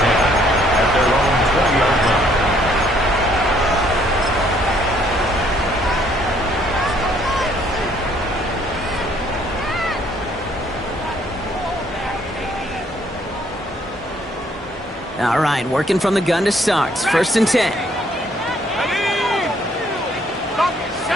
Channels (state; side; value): normal; both; correlation 0.65